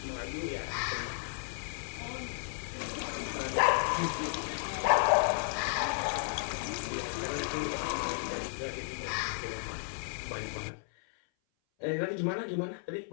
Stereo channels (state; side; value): silent; right; 55 dB below the other